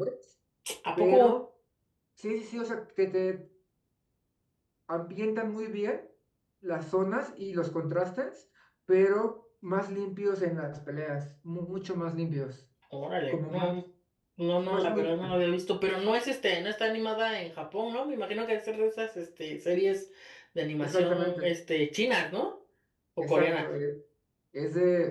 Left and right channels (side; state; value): both; identical; correlation 1.00